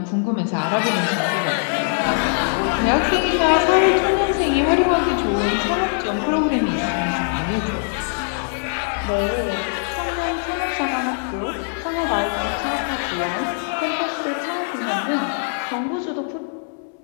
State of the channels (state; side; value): silent; right; digital silence